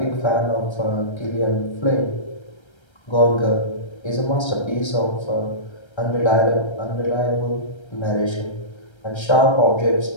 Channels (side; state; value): right; late; 1.3 ms